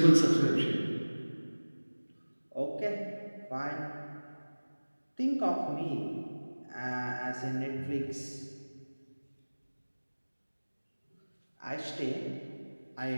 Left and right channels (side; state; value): both; inverted; correlation -1.00